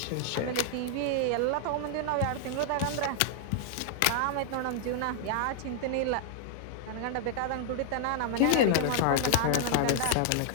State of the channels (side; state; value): both; different; correlation -0.01